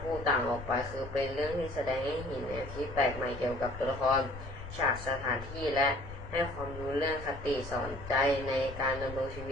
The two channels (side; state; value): left; noise; rumble, 12 dB below the sound